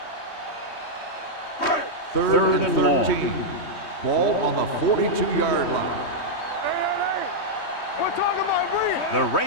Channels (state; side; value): late; right; 3.2 ms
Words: Third and 13. Ball on the 42-yard line. We're talking about breathe. The